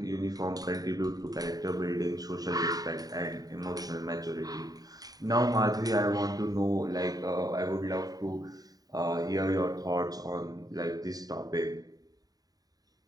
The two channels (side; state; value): left; late; 0.18 ms